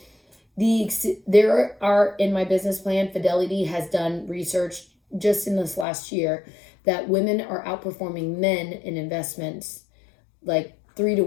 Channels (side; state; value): right; drops out; at 5.9 s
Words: there are, in my business plan, Fidelity has done research just in this last year that women are outperforming men in investments, like